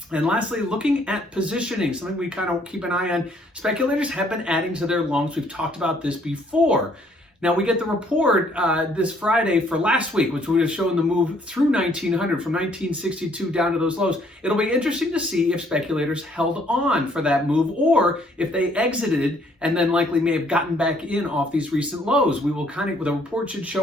And lastly, looking at positioning, something we kind of keep an eye on. Speculators have been adding to their longs. We've talked about this before. Now, we get the report this Friday for last week, which would have shown the move through 1900 from 1962 down to those lows. It'll be interesting to see if speculators held on for that move or if they exited and then likely may have gotten back in off these recent lows. We will the report should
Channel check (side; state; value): both; normal; correlation 0.64